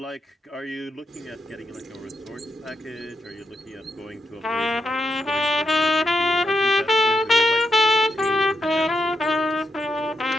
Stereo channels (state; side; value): normal; both; correlation 0.82